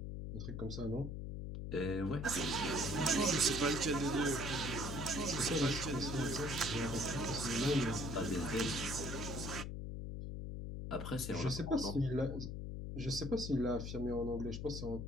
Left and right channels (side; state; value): left; noise; hum, 5 dB below the sound